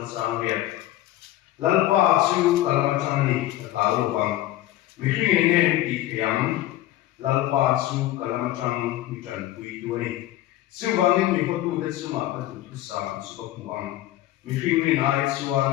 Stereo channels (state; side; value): quieter; right; 14.6 dB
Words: Psalm Việt lalpa chu kalamachani talu bang mihring ngen ti thiam lalpa chu kalamachang mitan pui tuani chu wangin mi hotu de chuma ka tu sa chu ko muang mihring ni nai